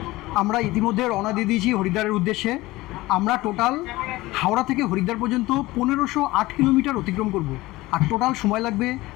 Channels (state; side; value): quieter; right; 19.2 dB